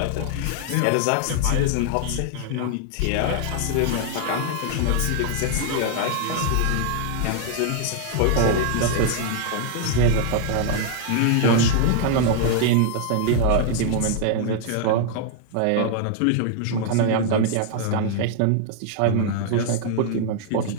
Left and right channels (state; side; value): different; both; correlation 0.00